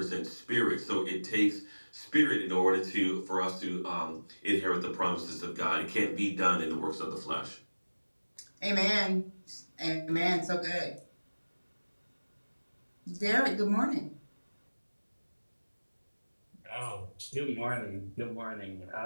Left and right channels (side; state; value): both; inverted; correlation -1.00